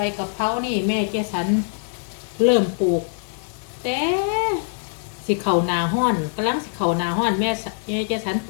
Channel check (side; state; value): right; silent; 63 dB below the other